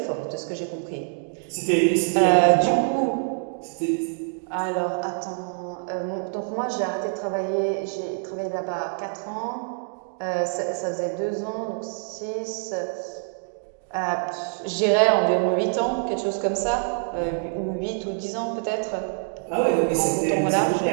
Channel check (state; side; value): silent; left; 61 dB below the other